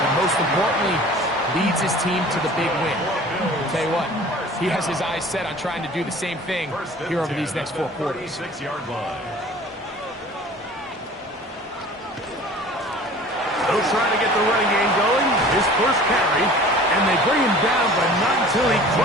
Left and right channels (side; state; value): both; normal; correlation 0.45